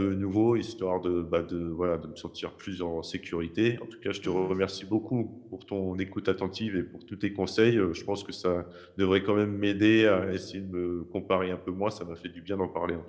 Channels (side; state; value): both; identical; correlation 1.00